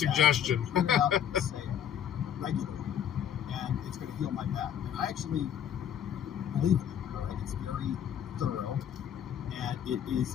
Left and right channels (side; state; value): right; quieter; 9.4 dB